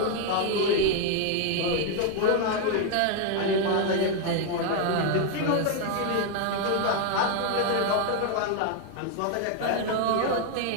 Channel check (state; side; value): different; both; correlation 0.01